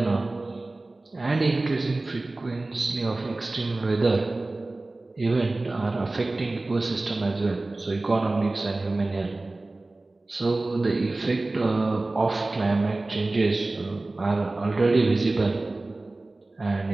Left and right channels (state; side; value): quieter; left; 3.0 dB